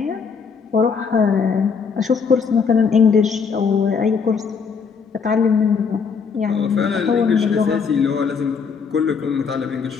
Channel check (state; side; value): quieter; right; 5.8 dB